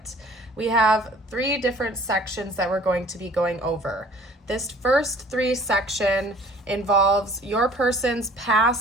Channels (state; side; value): normal; both; correlation 0.52